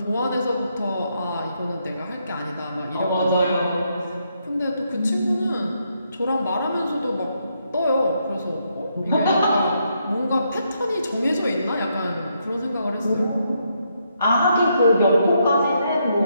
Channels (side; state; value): both; inverted; correlation -0.77